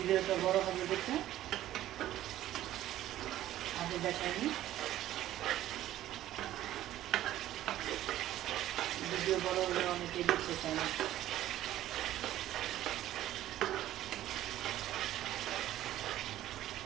বড় হবে দেখে আগে দেখাইনি, ভিডিও বড় হলে অনেকেই দেখতে চায় না।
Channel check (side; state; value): left; quieter; 13.5 dB